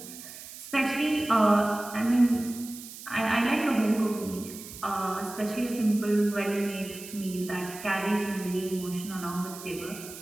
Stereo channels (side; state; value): right; noise; hiss, 14 dB below the sound